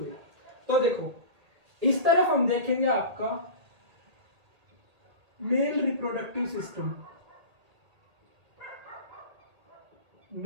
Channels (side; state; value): left; late; 1.8 ms